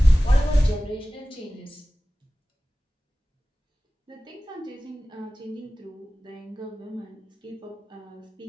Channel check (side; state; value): both; normal; correlation 0.97